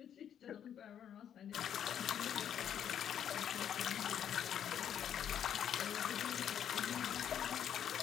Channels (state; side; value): quieter; right; 9.3 dB